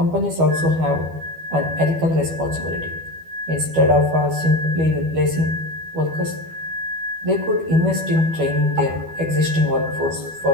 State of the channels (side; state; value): left; late; 12 ms